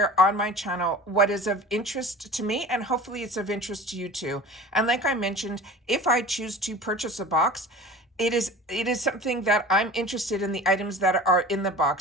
on my channel what is of interest to me, and hopefully it's of interest to you too. And like I mentioned, if I choose to purchase a box, it is something that I'm interested in the items that are in the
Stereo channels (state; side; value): normal; both; correlation 0.38